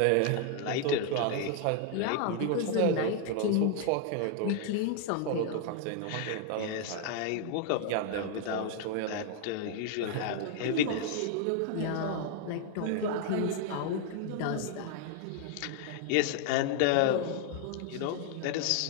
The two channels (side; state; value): both; different; correlation 0.00